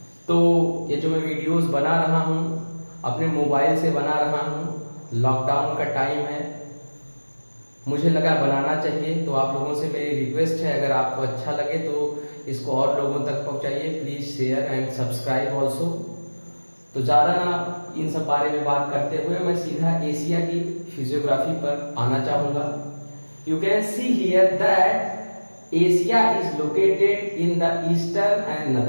तो ये जो मैं वीडियोस बना रहा हूँ अपने मोबाइल से बना रहा हूँ, लॉकडाउन का टाइम है, मुझे लगा बनाना चाहिए। तो आप लोगों से मेरी रिक्वेस्ट है, अगर आपको अच्छा लगे तो इसको और लोगों तक पहुँचाइए। Please share and subscribe also. तो ज़्यादा ना इन सब बारे में बात करते हुए मैं सीधा एशिया की फिजियोग्राफी पर आना चाहूँगा। You can see here that Asia is located in the eastern and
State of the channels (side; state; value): both; inverted; correlation -1.00